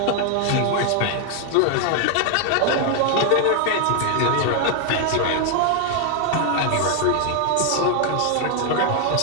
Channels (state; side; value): different; both; correlation 0.00